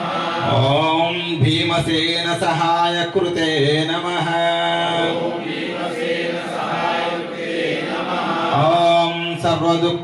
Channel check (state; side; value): identical; both; correlation 1.00